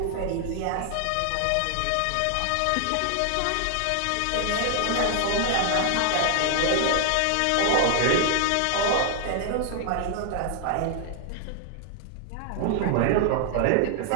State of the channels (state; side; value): different; both; correlation 0.00